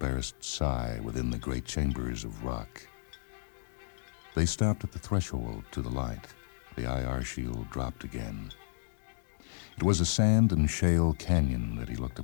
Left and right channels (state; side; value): silent; right; digital silence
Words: sigh within the great chambers of rock. They stopped at the threshold to the light. The IR shield dropped again. It was a sand and shale canyon that he looked